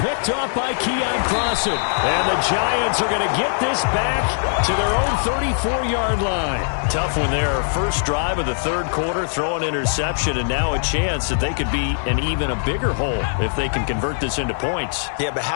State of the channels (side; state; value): right; silent; digital silence